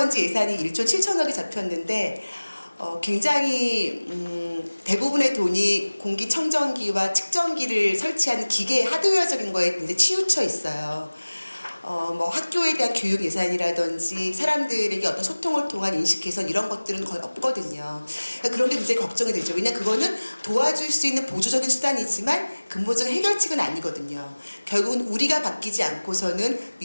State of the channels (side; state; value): both; inverted; correlation -1.00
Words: 예산이 1조 7천억이 잡혔는데 굉장히 대부분의 돈이 공기청정기와 측정기를 설치하는 기계 하드웨어적인 거에 이제 치우쳐 있어요. 뭐 학교에 대한 교육 예산이라든지 사람들에게 어떤 소통을 통한 인식 개선 이런 것들은 거의 없거든요. 그러니까 그런 게 굉장히 걱정이 되죠. 왜냐하면 그거는 도와줄 수 있는 보조적인 수단이지만 근본적인 해결책은 아니거든요. 결국은 우리가 바뀌지 않고서는